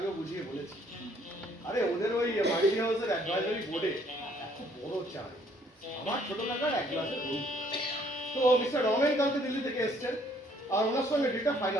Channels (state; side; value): normal; both; correlation 0.63